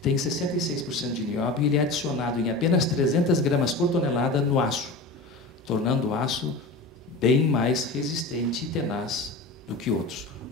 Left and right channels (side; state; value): right; quieter; 3.0 dB